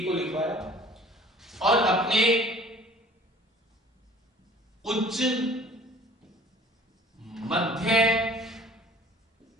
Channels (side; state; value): both; normal; correlation 0.50